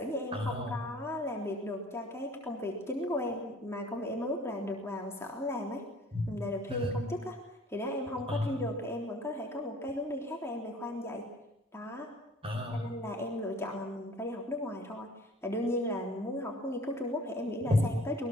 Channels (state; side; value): normal; both; correlation 0.50